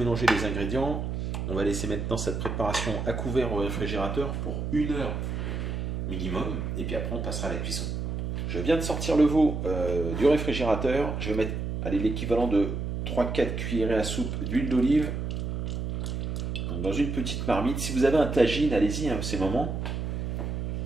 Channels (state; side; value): noise; right; hum, 3 dB below the sound